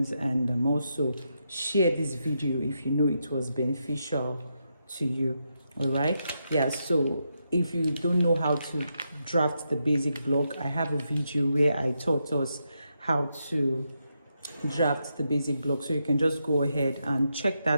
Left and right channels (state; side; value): inverted; both; correlation -0.83